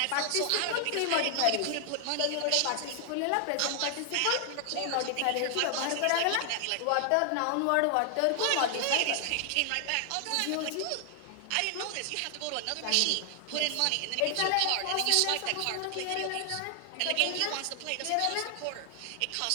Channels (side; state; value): both; different; correlation 0.00